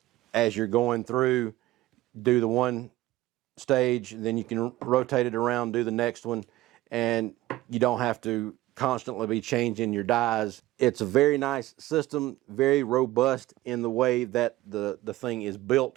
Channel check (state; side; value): quieter; left; 16.8 dB